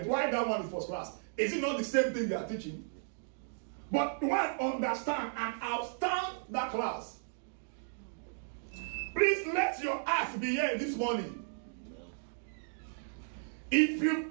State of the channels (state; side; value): silent; left; digital silence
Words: Why that one is first class? Is it not the same thing they are teaching? But one understand and outstand that class. Please let your act be here this morning. If you